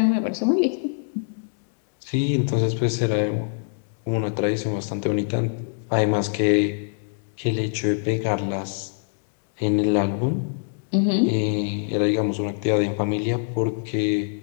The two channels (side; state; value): right; silent; digital silence